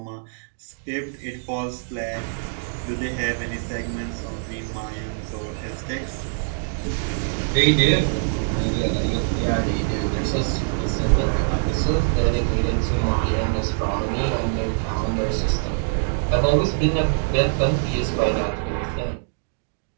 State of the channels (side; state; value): left; silent; digital silence